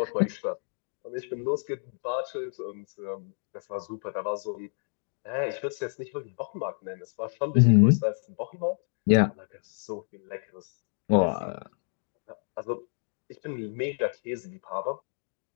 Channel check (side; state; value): right; silent; digital silence